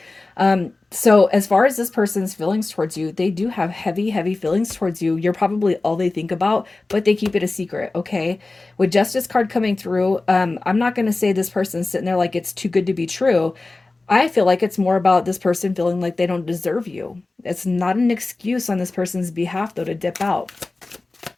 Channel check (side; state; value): right; quieter; 3.3 dB